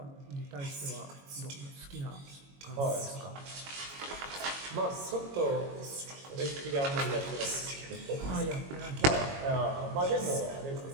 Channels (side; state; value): left; late; 22 ms